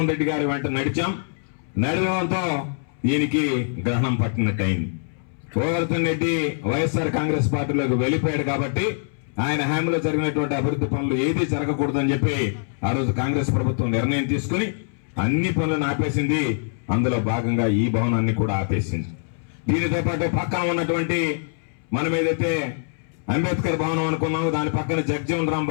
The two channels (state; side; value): silent; right; 63 dB below the other